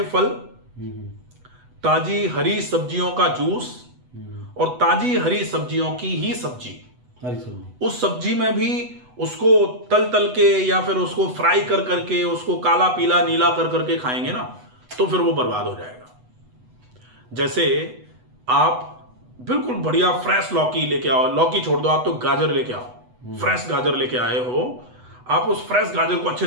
फल, ताजी हरी सब्जियों का जूस और ताजी हरी सब्जियों की ही सब्जी, उस सब्जी में भी उसको तल तल के या फिर उसको फ्राई कर करके उसको काला पीला नीला कर करके खाएंगे ना तो फिर वो बर्बाद हो जाएगा। जैसे आप बिल्कुल बढ़िया फ्रेश लौकी लेके आओ, लौकी छोड़ दो, आप तो गाजर लेके आओ, फ्रेश गाजर लेके आए हो, आप उस फ्रेश गाजर को अच्छे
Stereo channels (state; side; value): late; left; 8.1 ms